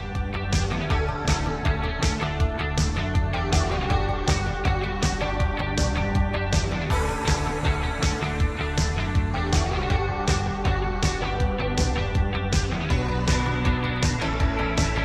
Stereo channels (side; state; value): both; identical; correlation 1.00